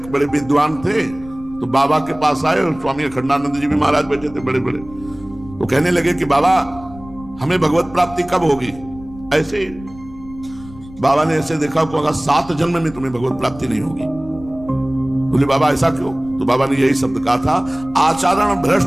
बड़े विद्वान थे तो बाबा के पास आए और स्वामी अखंडानंद जी भी महाराज बैठे थे बड़े बड़े। तो कहने लगे कि बाबा हमें भगवत प्राप्ति कब होगी? ऐसे ही बाबा ने ऐसे देखा को 7 जन्म में तुम्हें भगवत प्राप्ति नहीं होगी। बोले बाबा ऐसा क्यों? तो बाबा ने यही शब्द कहा था, आचरण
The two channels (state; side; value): noise; left; rumble, 19 dB below the sound